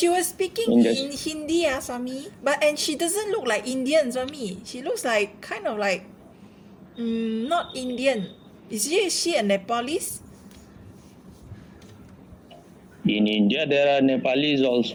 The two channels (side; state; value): both; identical; correlation 1.00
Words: was speaking in in Hindi, Swami. And she doesn't look like Indian, Swami. She looks like kind of like not Indian. Is she a Nepalese? In India, there are Nepalis